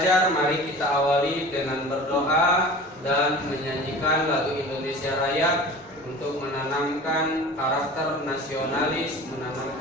mari kita awali dengan berdoa dan menyanyikan lagu Indonesia Raya untuk menanamkan karakter nasionalis,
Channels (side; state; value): both; normal; correlation 0.39